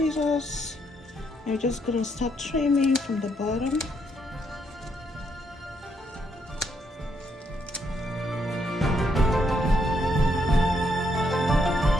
You're just going to start trimming from the bottom.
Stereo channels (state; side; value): normal; both; correlation 0.75